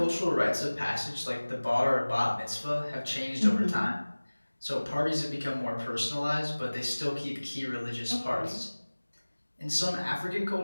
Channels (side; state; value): both; inverted; correlation -1.00